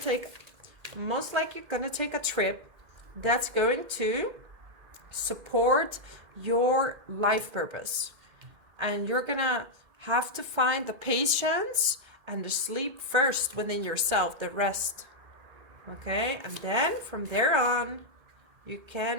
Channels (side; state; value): left; late; 2.1 ms